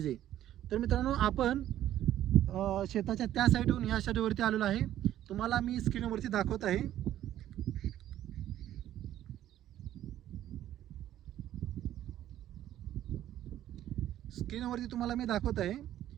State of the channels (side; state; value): left; quieter; 12.4 dB